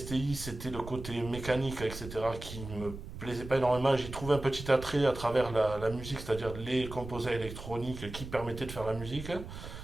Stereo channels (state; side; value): noise; right; rumble, 11 dB below the sound